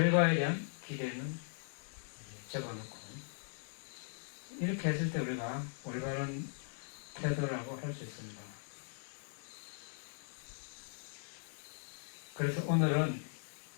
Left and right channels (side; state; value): right; silent; 51 dB below the other